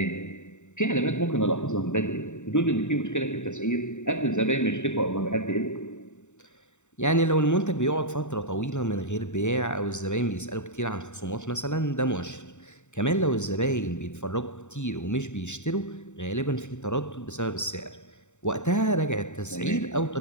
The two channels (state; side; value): late; right; 0.84 ms